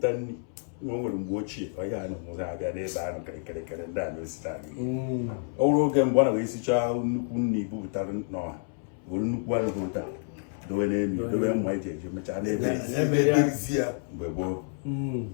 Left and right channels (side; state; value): right; silent; 59 dB below the other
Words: nri na o nwere mgbe ochie ọhịa anụ mụrụ abịa n'ebe anụ kịrịkịrịkịrị ndị a na-esita n'ihu ọ bụrụ oge mgbe ọ na wee sichaa nnukwu nri bupụtara n'ọha were nnukwu anụ bupụta dowe n'elu dowe mma eji eji mechaa n'ebe mgbe gboo